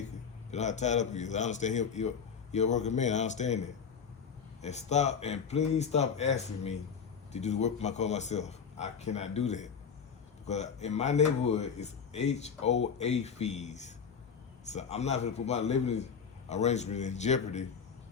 You know how tied up he is. I understand he's a working man. I understand that. And please stop asking me to do the work for my car myself. I cannot do that. Because in my neighborhood, it's HOA fees. So I'm not going to put my living arrangement in jeopardy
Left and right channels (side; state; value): right; quieter; 6.5 dB